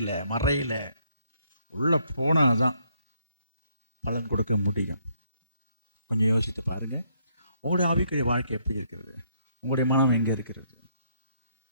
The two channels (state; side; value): inverted; both; correlation -0.70